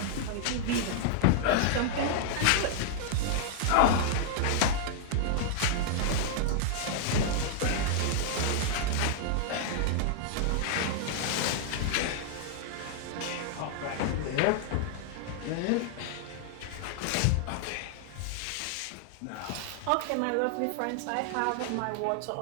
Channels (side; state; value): both; different; correlation -0.01